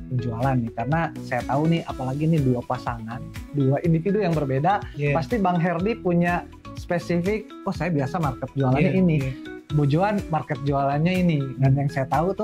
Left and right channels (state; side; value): identical; both; correlation 1.00